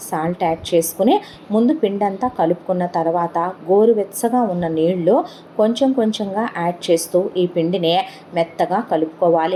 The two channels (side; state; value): both; identical; correlation 1.00